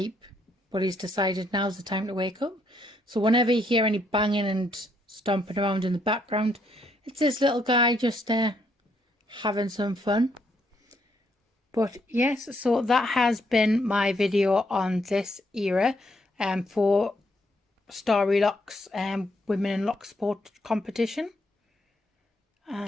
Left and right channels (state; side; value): normal; both; correlation 0.73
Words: but he's decided now's the time to wake up. So whenever you hear any banging and stomping around in the background, it's this little guy just having some fun. But yes, so that has been my video on this era for Story Locks Women in Lock Sport competition.